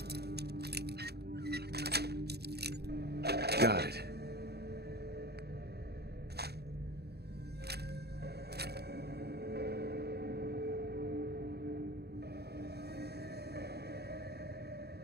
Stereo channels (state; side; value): late; left; 0.47 ms